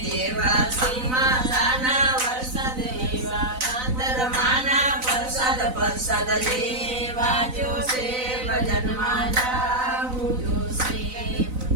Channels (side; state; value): left; late; 4.0 ms